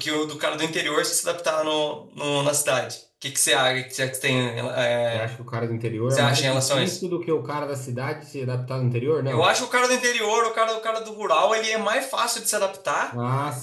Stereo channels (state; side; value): identical; both; correlation 1.00